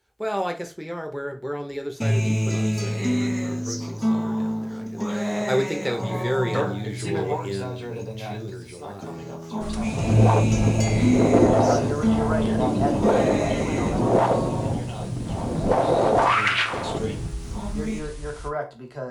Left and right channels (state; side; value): identical; both; correlation 1.00